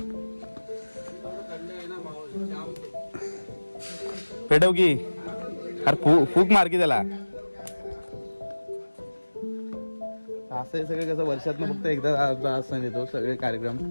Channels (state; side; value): inverted; both; correlation -1.00